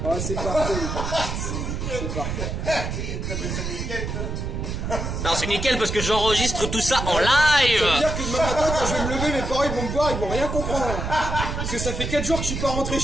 Ah c'est parfait. C'est parfait. C'est nickel, toi. Non, c'est nickel parce que j'enregistre tout ça en Ça veut live. dire que demain matin, quand je vais me lever, mes parents ils vont me voir, ils vont rien comprendre. Parce que ça fait 4 jours que je suis pas rentré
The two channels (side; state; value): right; noise; rumble, 3 dB below the sound